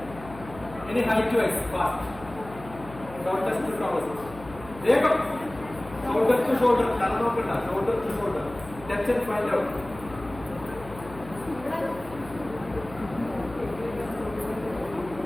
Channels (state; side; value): noise; left; hum, 16 dB below the sound